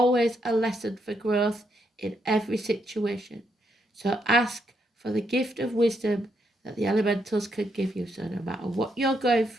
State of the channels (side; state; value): both; normal; correlation 0.78